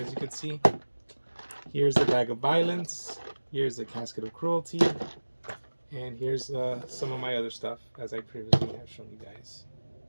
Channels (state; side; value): inverted; both; correlation -1.00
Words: you can see, here's the bag of violence, here's the casket of cruelty, and here's some of my other stuff, as I previously have shown you guys.